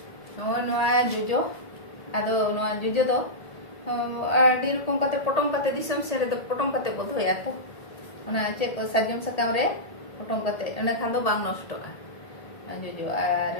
नोआ जोजो आदो नोआ जोजो दो आडी रकम कते पटम कते दिसम से रे पटम कते बधोया तो ओना चेक को साजम सकाम रे पटम कते एना खान दो बांग नष्टोगा जोजो आर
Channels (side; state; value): right; late; 1.8 ms